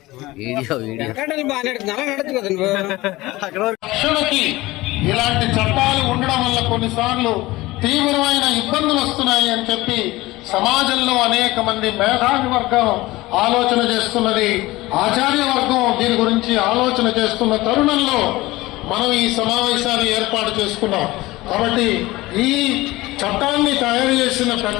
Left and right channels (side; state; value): right; quieter; 19.3 dB